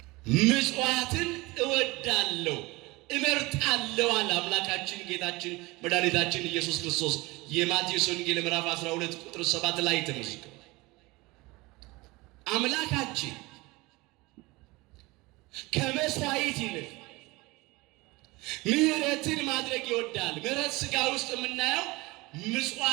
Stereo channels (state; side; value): quieter; left; 22.7 dB